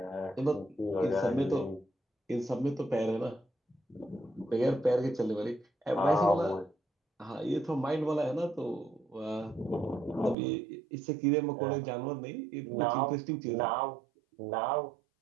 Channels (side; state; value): left; drops out; at 10.4 s